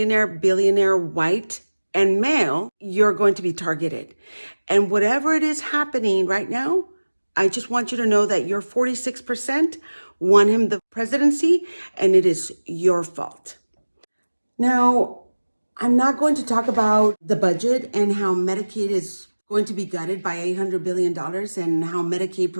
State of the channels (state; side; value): inverted; both; correlation -1.00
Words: billionaire, white, and male, you're going to be targeted. And whatever it is happening right now, I just want you to know that your 46% won him the presidency, and it is your fault. Now, I'm not going to talk about the budget and how Medicaid is going to be gutted by $800 billion and how Medicaid